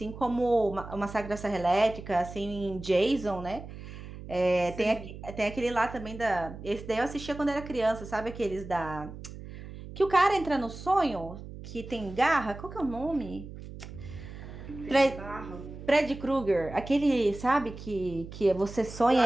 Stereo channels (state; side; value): noise; right; hum, 13 dB below the sound